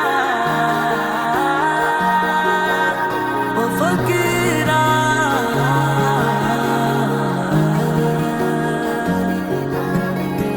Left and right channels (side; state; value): both; identical; correlation 1.00